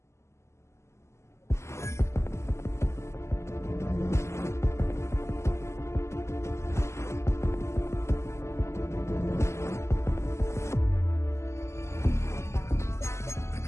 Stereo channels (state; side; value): late; right; 0.13 ms